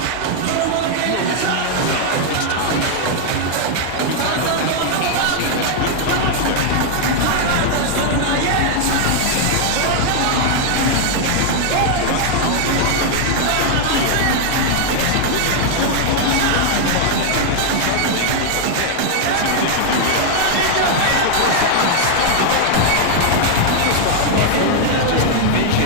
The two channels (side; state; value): both; different; correlation 0.00